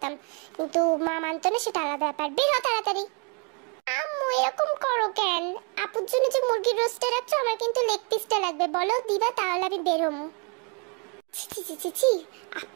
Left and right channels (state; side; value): quieter; left; 36.0 dB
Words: কিন্তু মা মানতো না, সেটা আলাদা ব্যাপার। বের হ তাড়াতাড়ি। আম্মু এরকম করো কেন? আপুর জন্য যে মুরগির রোস্টে রাখছো, আমার কিন্তু লেগ পিসটা লাগবে, বলো দিবা, তাহলে আমি বের হবো। ছি,